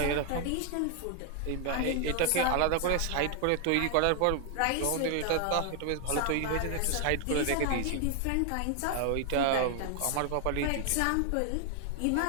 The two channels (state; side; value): different; both; correlation 0.00